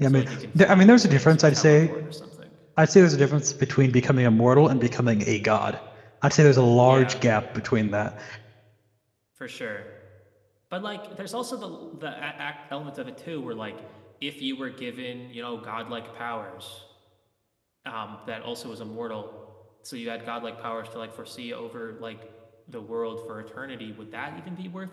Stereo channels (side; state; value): both; identical; correlation 1.00